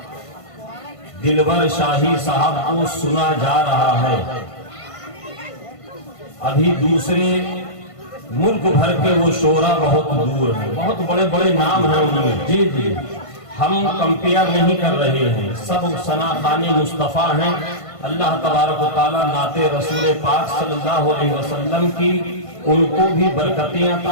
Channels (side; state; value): right; late; 1.5 ms